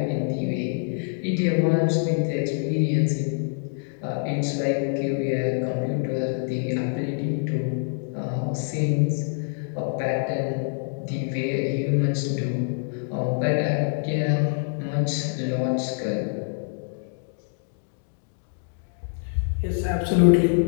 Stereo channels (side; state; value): right; silent; 61 dB below the other